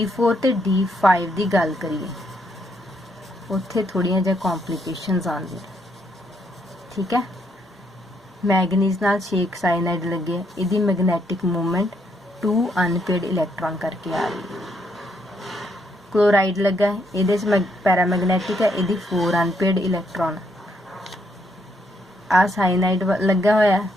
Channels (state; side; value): normal; both; correlation 0.74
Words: ਤੇ D5 ਦੀ ਗੱਲ ਕਰੀਏ, ਉੱਥੇ ਥੋੜੀਆਂ ਜਿਹਾ ਕੰਪਲਿਕੇਸ਼ਨਸ ਆਉਂਦੀਆਂ, ਠੀਕ ਹੈ। ਮੈਗਨੀਜ਼ ਨਾਲ 6 ਸਾਇਨਾਈਡ ਲੱਗੇ, ਇਹਦੀ ਮੈਗਨੈਟਿਕ ਮੂਵਮੈਂਟ 2 ਅਨਪੇਅਰਡ ਇਲੈਕਟ੍ਰੋਨ ਕਰਕੇ ਆ ਰਹੀ ਹੈ। क्लोराइड लगा है, ये पैरामैग्नेटिक है, ये 4 अनपेयर्ड इलैक्ट्रॉन। आ साइनाइड लगा हुआ है,